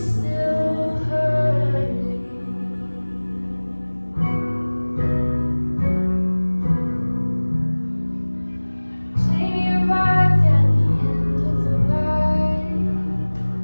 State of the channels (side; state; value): both; inverted; correlation -1.00